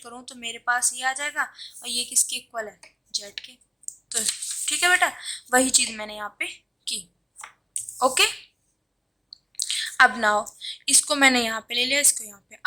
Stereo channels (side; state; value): both; identical; correlation 1.00